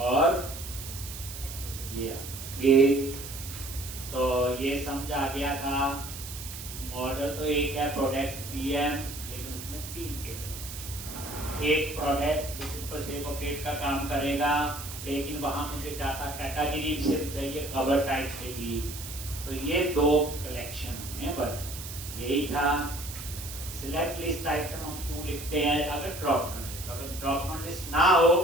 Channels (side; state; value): right; noise; hiss, 10 dB below the sound